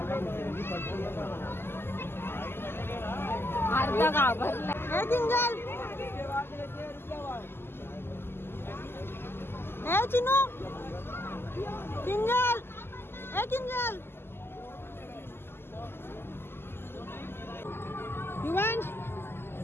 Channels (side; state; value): right; late; 0.11 ms